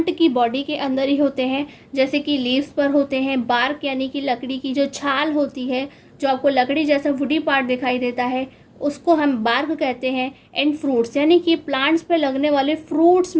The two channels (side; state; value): both; identical; correlation 1.00